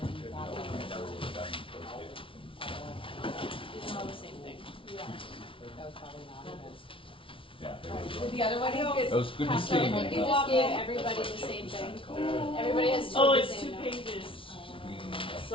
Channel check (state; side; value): late; right; 0.25 ms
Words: you thought It's all the same thing. Yeah. That was probably not it. Yeah. The other one is That was good to see. You just gave everybody the same thing. Everybody has two Oh, of the it's same 2 notes. pages. So